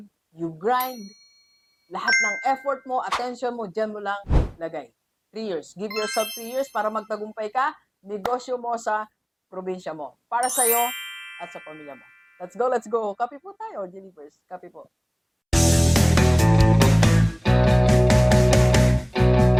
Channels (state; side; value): identical; both; correlation 1.00